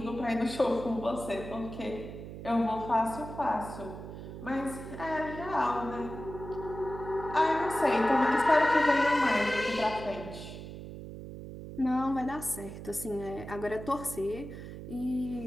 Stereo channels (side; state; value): right; noise; hum, 11 dB below the sound